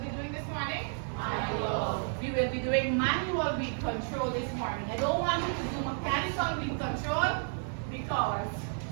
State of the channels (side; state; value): left; silent; 57 dB below the other